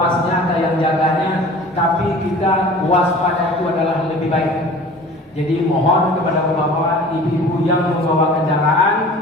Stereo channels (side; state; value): both; normal; correlation 0.43